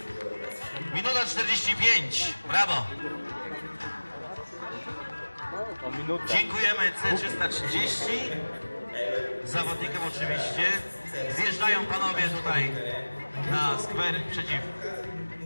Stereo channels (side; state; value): both; inverted; correlation -1.00